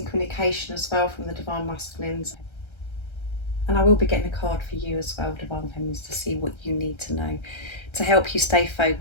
communication as well from the Divine Masculines, and I will be getting a card for you as well, Divine Feminines, to see what you need to know to help you stay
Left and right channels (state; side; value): late; right; 1.3 ms